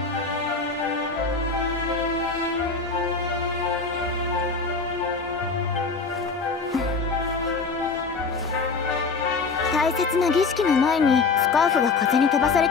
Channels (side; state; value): right; quieter; 4.5 dB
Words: 大切な儀式の前にスカーフが風に飛ばされ